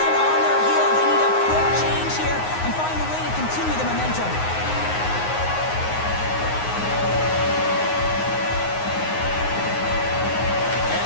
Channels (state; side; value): late; right; 9.5 ms